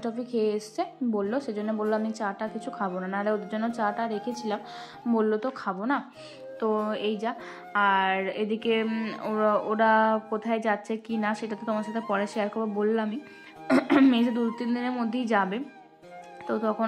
টফি খেয়ে এসছে বললো, সেজন্য বললো আমি চাটা কিছু খাবো না, নাহলে ওদের জন্য চাটা রেখেছিলাম, বললো তো খাবো না। তো এই যা। আর এদিকে ওরা কোথায় যাচ্ছে কি না সেটা তো তোমার সাথে পরে শেয়ার করবো, বললামই মেজে 2-3 দিনের মধ্যেই যাবে, তো তখন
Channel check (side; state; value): both; identical; correlation 1.00